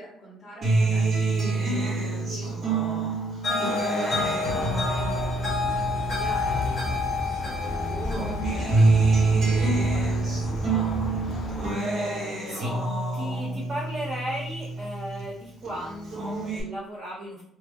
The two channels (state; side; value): normal; both; correlation 0.71